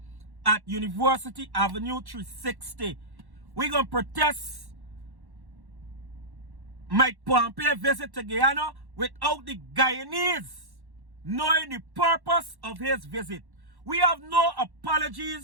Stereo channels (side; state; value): left; late; 1.1 ms